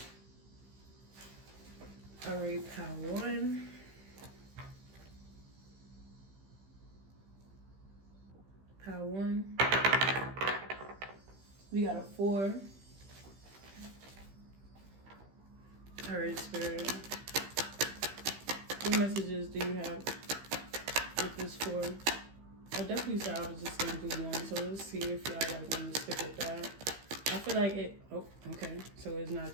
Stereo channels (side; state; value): left; late; 15 ms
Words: All right, pile 1. Pile 1. We got a 4. All right, Spirit. What messages do you have with this 4? I definitely said I was just going to do 1, so let's see if y'all like want to stick with that. I feel like it, oh, okay, so it's not